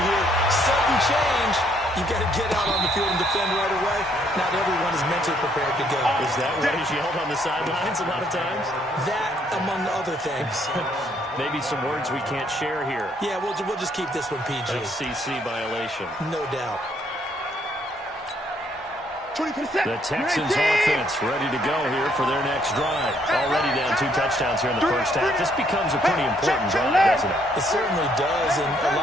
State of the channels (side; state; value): both; normal; correlation 0.69